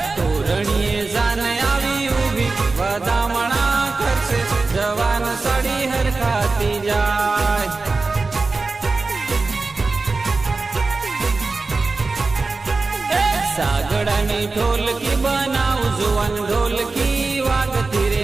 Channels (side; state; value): left; quieter; 3.8 dB